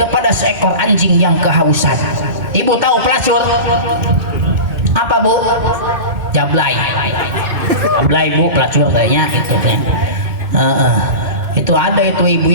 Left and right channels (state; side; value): late; left; 2.2 ms